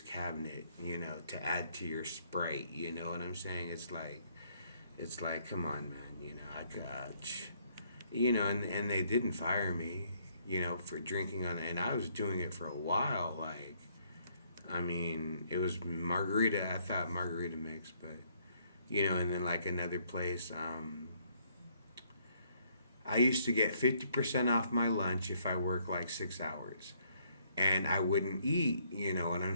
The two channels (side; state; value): both; inverted; correlation -0.68